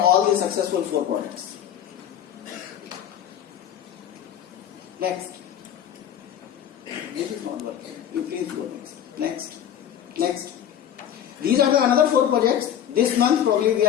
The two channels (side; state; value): right; quieter; 9.9 dB